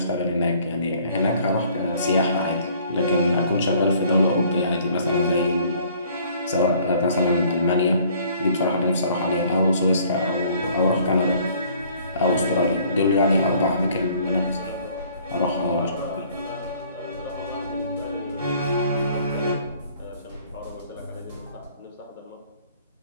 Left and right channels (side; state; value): both; inverted; correlation -0.58